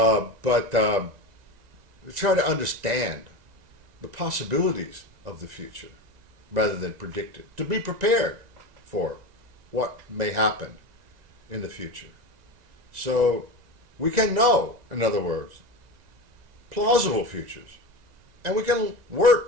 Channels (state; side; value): late; left; 1.9 ms